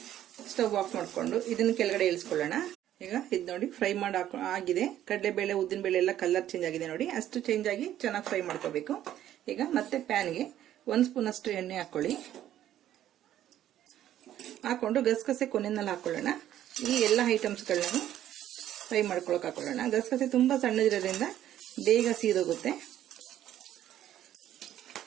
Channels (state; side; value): quieter; left; 12.0 dB